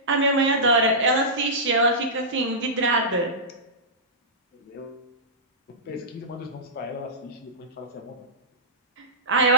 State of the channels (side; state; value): both; normal; correlation -0.17